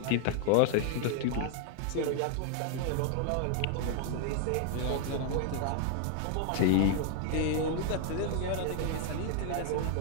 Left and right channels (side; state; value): both; different; correlation 0.00